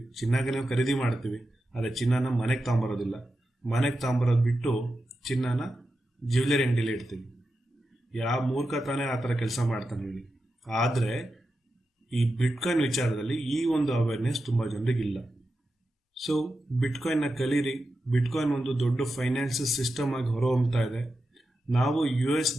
ಚಿನ್ನಗೆ ನಾವು ಖರೀದಿ ಮಾಡ್ತೀವಿ, ಆದರೆ ಚಿನ್ನನ ಮನೆಗೆ ತಗೊಂಬರೋದಿಲ್ಲ. ಮನೆಗೆ ತಗೊಂಬರೋದು ಬಿಟ್ಟು ಚಿನ್ನನ ಜ್ಯುವೆಲರಿ ಅಂಗಡಿಲಿ ಇಡ್ತೀವಿ. ಯಾವ ಮೂರ್ಖ ತಾನೇ ಆ ಥರ ಕೆಲಸ ಮಾಡ್ತಾನೆ ಹೇಳಿ. ಆದರೆ ಈ ಬಿಟ್ಕಾಯಿನ್ ವಿಚಾರದಲ್ಲಿ ಈ ಒಂದು ಅವೇರ್ನೆಸ್ ತುಂಬ ಜನರಿಗಿಲ್ಲ. ಸೊ ಬಿಟ್ಕಾಯಿನ್ನ ಕಲೀರಿ. ಬಿಟ್ಕಾಯಿನ್ ಒಂದು ದೊಡ್ಡ ಫೈನಾನ್ಷಿಯಲ್ ಸಿಸ್ಟಮ್ ಆಗಿ ಹೊರಹೊಮ್ತಾ ಇದೆ. ನಾವು US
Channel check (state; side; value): normal; both; correlation 0.90